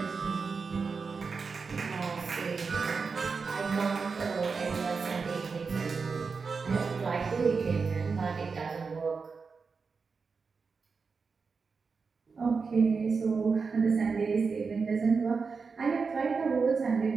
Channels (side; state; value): left; quieter; 4.9 dB